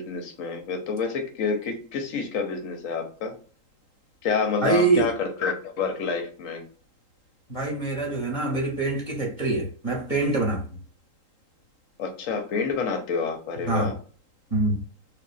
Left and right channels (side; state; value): right; late; 3.8 ms